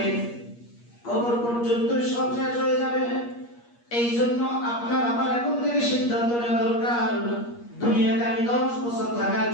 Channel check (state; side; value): late; right; 8.4 ms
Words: কবর পর্যন্ত সব শেষ হয়ে যাবে। এই জন্য আপনার আমার এখন থেকে সিদ্ধান্ত নেওয়া দরকার, দুনিয়াতে আমি 10 বছর থাকার